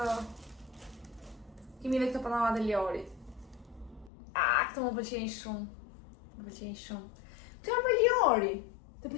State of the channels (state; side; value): drops out; right; at 4.1 s